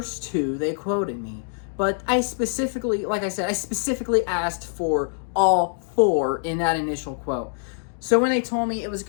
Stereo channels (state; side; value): silent; right; digital silence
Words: two they quoted me. But I specifically, like I said, I specifically asked for all four in that initial quote. So when they told me it was